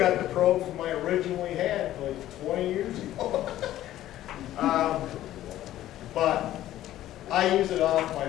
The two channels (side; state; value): right; quieter; 13.6 dB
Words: the probe from I originally had like 20 years ago. But I use it off my